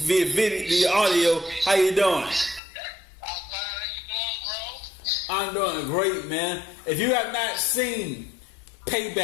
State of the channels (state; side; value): drops out; right; at 2.6 s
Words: the audio. How you doing? I'm doing great, man. If you have not seen